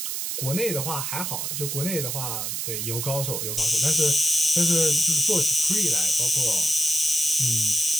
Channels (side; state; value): right; noise; hiss, 3 dB below the sound